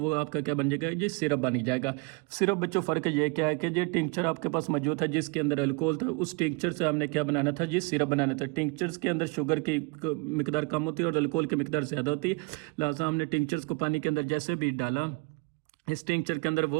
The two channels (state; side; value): quieter; left; 29.6 dB